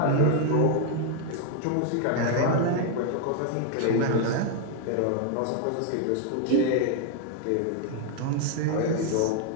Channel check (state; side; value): different; both; correlation 0.00